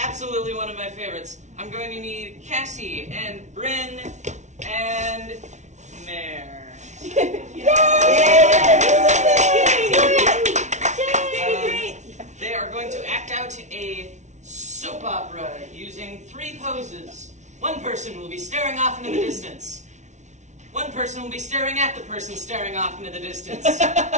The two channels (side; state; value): left; late; 0.34 ms